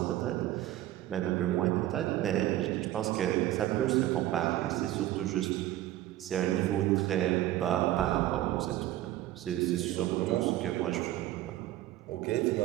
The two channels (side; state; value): left; quieter; 14.6 dB